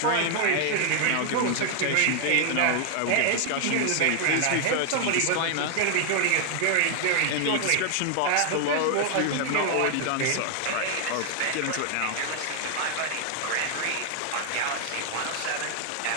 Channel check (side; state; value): both; different; correlation 0.00